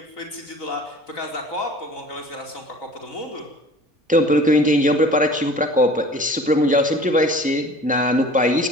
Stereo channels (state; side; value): normal; both; correlation 0.46